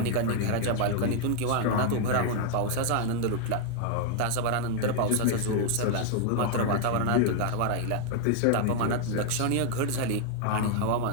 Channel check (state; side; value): different; both; correlation 0.00